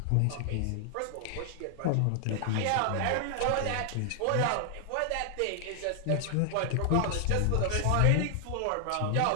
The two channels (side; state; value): both; different; correlation 0.00